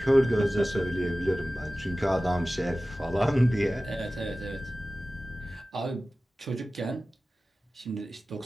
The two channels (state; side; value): normal; both; correlation 0.96